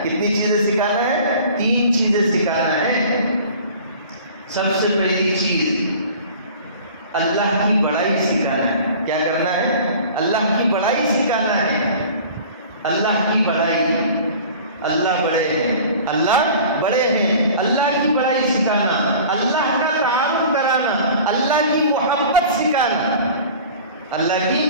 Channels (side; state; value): both; inverted; correlation -0.43